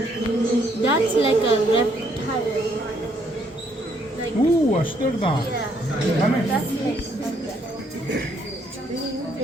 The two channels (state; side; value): normal; both; correlation 0.69